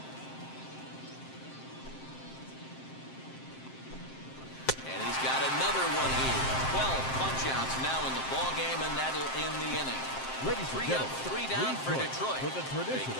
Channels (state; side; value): late; right; 7.6 ms